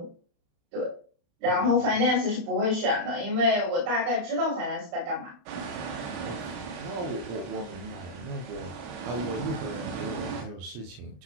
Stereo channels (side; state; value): left; late; 34 ms